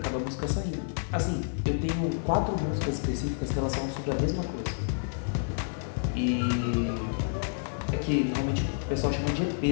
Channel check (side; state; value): right; silent; digital silence